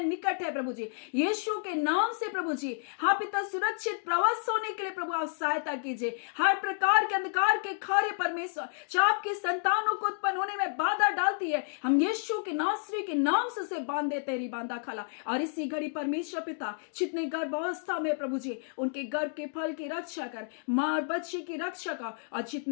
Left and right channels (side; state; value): right; silent; digital silence